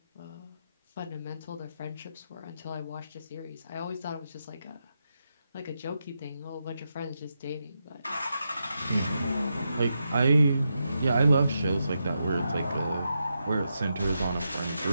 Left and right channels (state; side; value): inverted; both; correlation -0.86